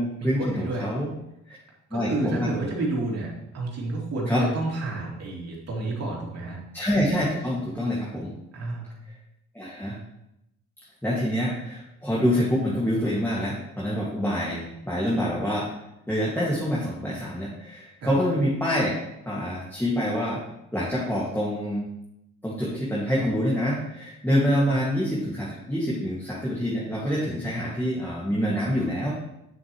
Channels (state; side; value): normal; both; correlation 0.69